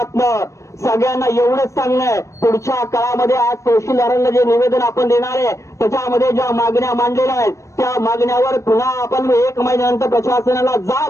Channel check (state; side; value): late; right; 0.15 ms